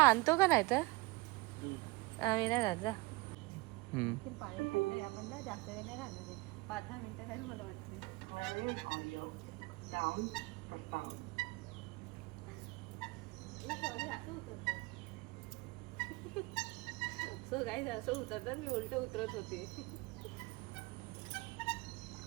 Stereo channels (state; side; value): quieter; left; 23.5 dB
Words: का नाही तर आम्ही नाही जात. जा. पाणी थंड आहे, आपण ना जास्त वेळ नाही राहणार आहे. 5-10 मिनिटं नाही मला वाटते. सो काही असं उतरतात, मी उलट उतरत होते.